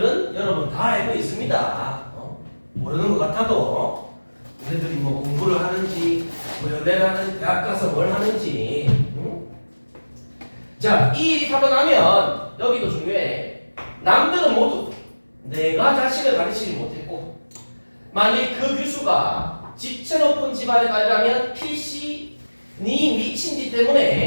여러분 다 알고 있습니다. 모르는 것 같아도 얘네들이 뭐 공부를 하는지 뭐 연애를 하는 대학 가서 뭘 하는지. 응? 자, 이 일이 하고 나면 여기도 중요해. 남들은 모두 내가 자식을 가르치지 못했고 만일 그 교수가 지체 높은 집안에 가려면 필시 네 미친 짓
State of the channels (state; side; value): inverted; both; correlation -1.00